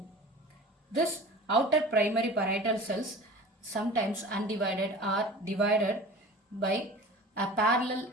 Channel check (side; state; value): both; normal; correlation 0.39